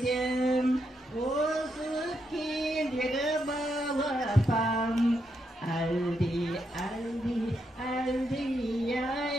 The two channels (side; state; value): both; normal; correlation 0.81